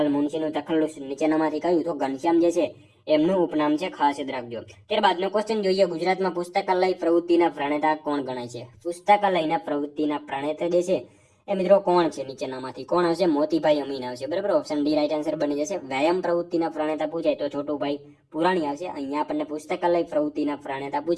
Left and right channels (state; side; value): identical; both; correlation 1.00